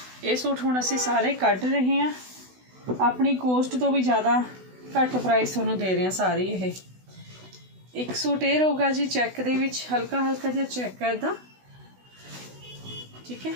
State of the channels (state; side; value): late; left; 16 ms